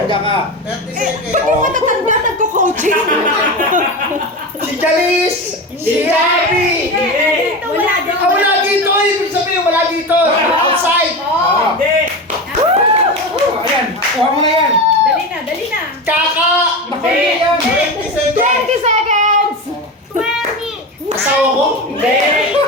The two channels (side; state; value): both; normal; correlation 0.23